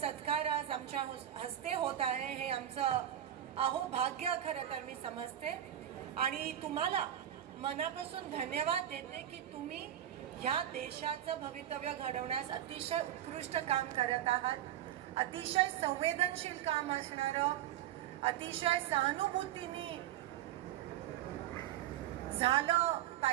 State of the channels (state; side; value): quieter; left; 11.5 dB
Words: आज आमच्या हस्ते होत आहे. हे आमचं अहोभाग्य खरं तर मी समजते आणि तुम्हाला मनापासून धन्यवाद देते की तुम्ही ह्या देशाचं भवितव्य घडवण्यास अतिशय उत्कृष्ट काम करत आहात. अतिशय संवेदनशील काम असणारं, अतिशय सहानुभूतीने झालं